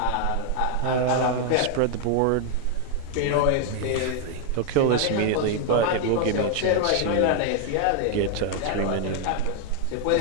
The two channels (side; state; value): both; different; correlation 0.00